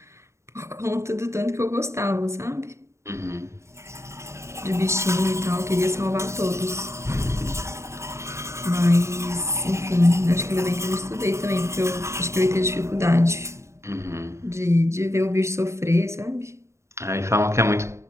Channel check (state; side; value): late; left; 0.14 ms